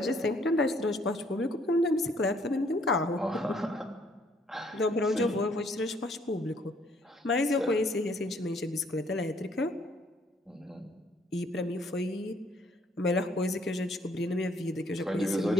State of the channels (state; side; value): normal; both; correlation 0.65